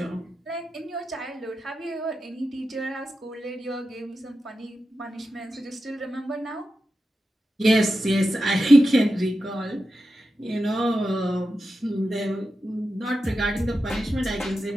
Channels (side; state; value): both; normal; correlation 0.90